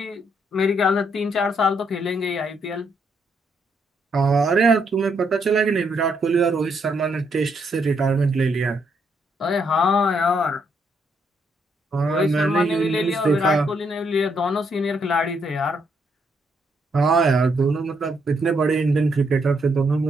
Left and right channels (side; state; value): both; normal; correlation 0.75